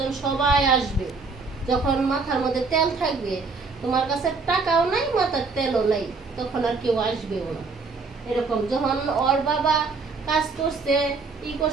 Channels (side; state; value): left; quieter; 4.4 dB